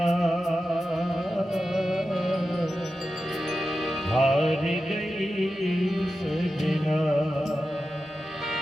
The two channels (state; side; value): normal; both; correlation 0.91